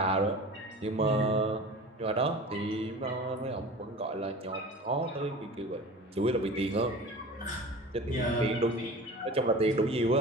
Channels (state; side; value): normal; both; correlation 0.37